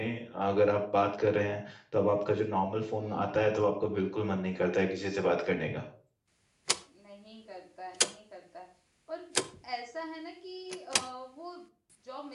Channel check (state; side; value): identical; both; correlation 1.00